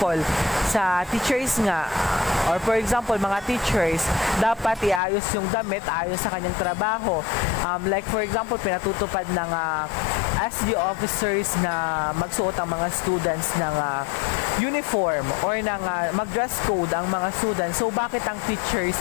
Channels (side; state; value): right; drops out; at 5.0 s